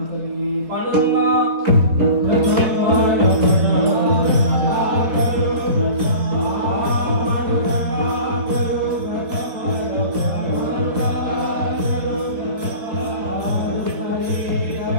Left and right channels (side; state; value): left; late; 4.0 ms